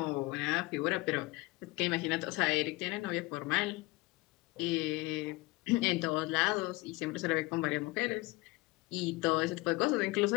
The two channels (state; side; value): quieter; right; 22.1 dB